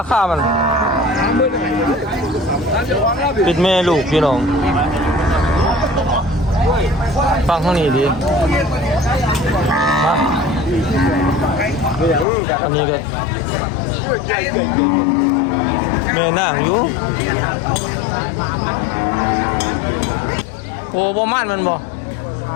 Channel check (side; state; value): right; drops out; at 12.2 s